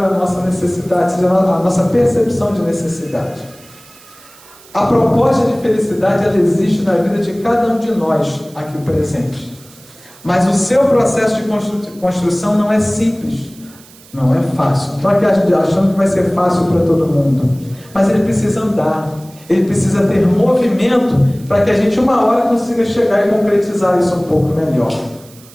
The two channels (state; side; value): noise; right; hiss, 24 dB below the sound